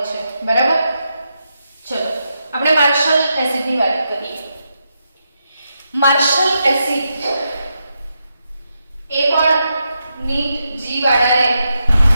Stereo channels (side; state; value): both; inverted; correlation -0.84